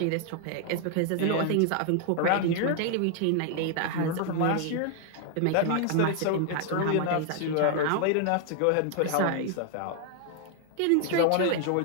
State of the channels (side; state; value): both; different; correlation 0.00